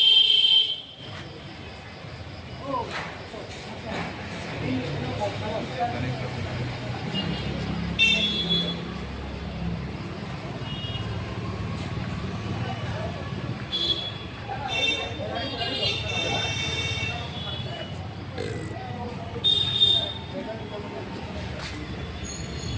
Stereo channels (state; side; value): identical; both; correlation 1.00